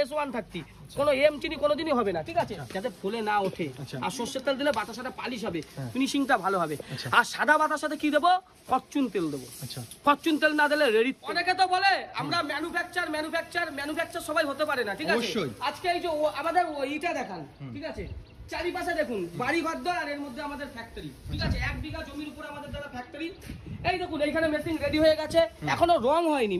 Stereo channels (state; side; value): identical; both; correlation 1.00